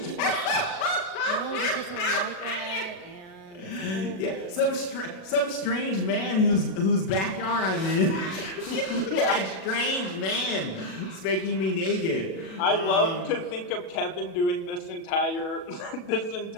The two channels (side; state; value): right; late; 37 ms